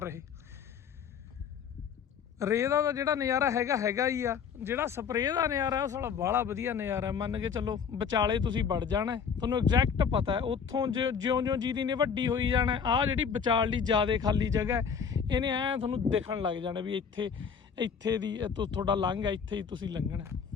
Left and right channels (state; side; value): quieter; right; 6.7 dB